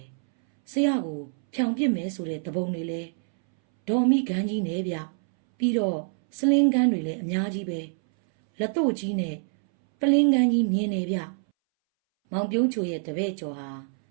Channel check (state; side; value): silent; left; 61 dB below the other